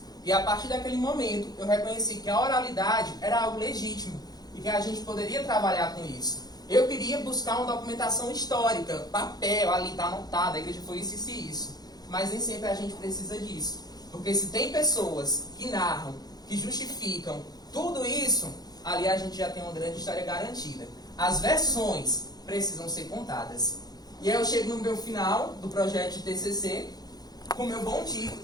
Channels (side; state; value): right; late; 0.19 ms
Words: E a partir daquele momento, eu reconheci que a oralidade era algo legítimo e que a gente poderia trabalhar com isso. Eu queria buscar uma documentação histórica, papel, ali está anotado, a igreja foi isso e isso. Mas nem sempre a gente precisa disso. Porque se tem pessoas que narram, que justificam tudo isso, ali a gente já tem uma grande história garantida. As versões precisam ser contadas. E aí eu chego no meu final do projeto de TCC, com o meu bom título,